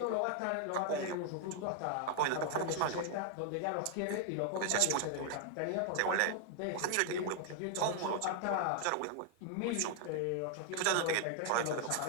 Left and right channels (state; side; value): different; both; correlation 0.00